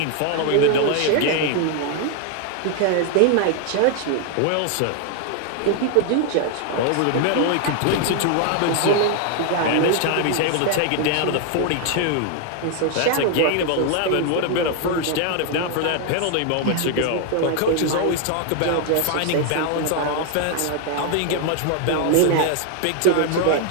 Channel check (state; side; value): different; both; correlation 0.00